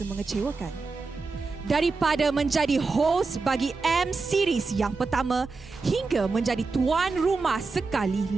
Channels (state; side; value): quieter; left; 4.1 dB